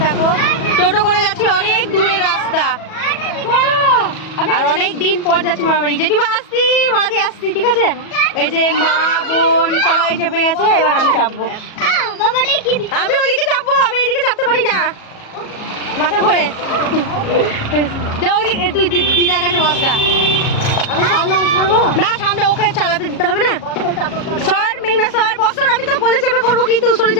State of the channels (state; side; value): late; right; 37 ms